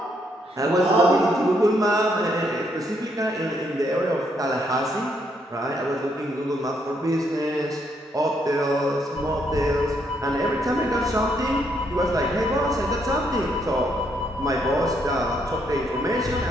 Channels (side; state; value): both; normal; correlation 0.74